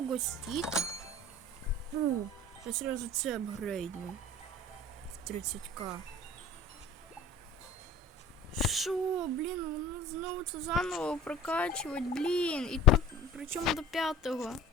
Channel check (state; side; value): normal; both; correlation 0.44